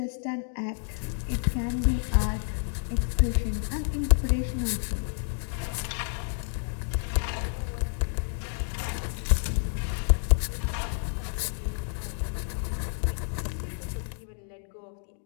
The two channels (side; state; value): right; silent; 58 dB below the other